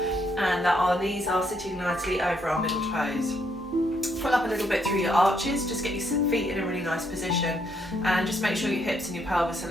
and that our knees are sitting nicely over our middle toes. Pull up a little bit through your arches, just get your feet in a really nice position and just make sure your hips and your pelvis are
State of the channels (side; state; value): both; normal; correlation 0.73